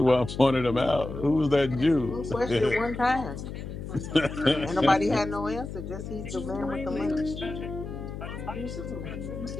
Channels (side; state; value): left; noise; hum, 8 dB below the sound